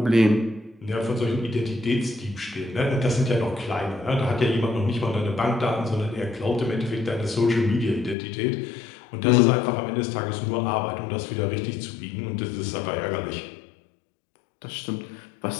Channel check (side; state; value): right; drops out; at 8.2 s